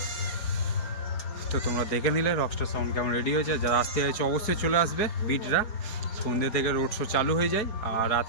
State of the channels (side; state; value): right; late; 4.7 ms